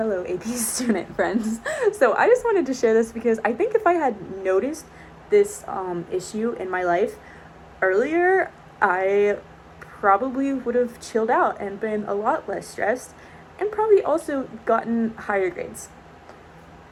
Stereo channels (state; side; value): identical; both; correlation 1.00